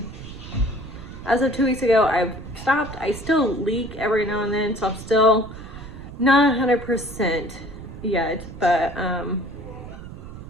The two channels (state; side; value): noise; right; rumble, 13 dB below the sound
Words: as of 2 weeks ago, I've stopped. I still leak every now and then, so I'm still not 100% yet, but